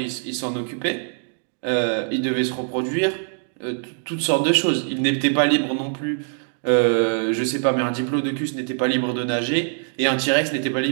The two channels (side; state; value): left; silent; digital silence